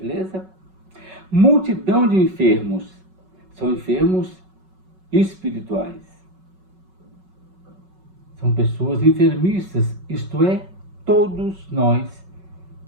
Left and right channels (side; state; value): left; late; 5.3 ms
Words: Multidão de enfermos. São enfermos espirituais. São pessoas enfermiças, isto é, todos nós